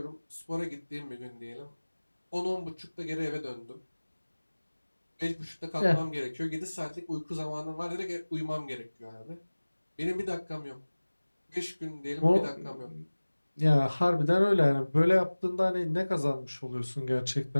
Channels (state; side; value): inverted; both; correlation -1.00